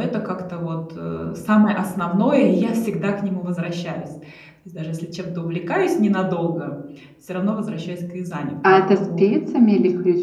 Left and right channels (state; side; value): identical; both; correlation 1.00